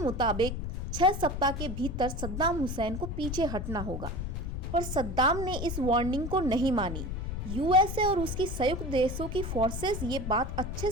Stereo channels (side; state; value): left; noise; rumble, 4 dB below the sound